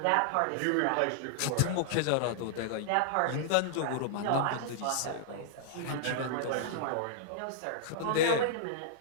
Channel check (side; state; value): both; different; correlation -0.01